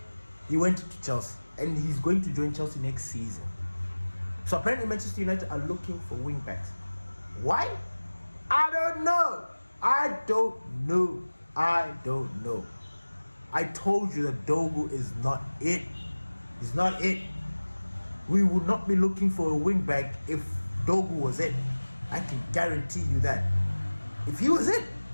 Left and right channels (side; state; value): both; inverted; correlation -1.00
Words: He went to Chelsea, and he's going to join Chelsea next season. So apparently Manchester United are looking for wing backs. Why? I don't know. I told you that Dogu is not it. He's not it. We would not be looking for a wing back if Dogu was it. I can guarantee you that. If he was it,